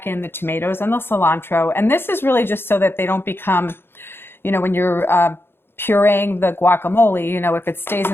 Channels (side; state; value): right; late; 0.11 ms